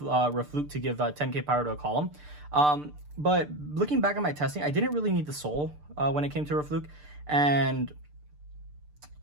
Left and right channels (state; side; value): late; left; 6.7 ms